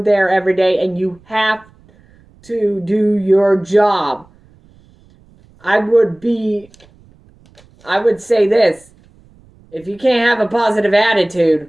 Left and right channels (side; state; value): right; noise; rumble, 29 dB below the sound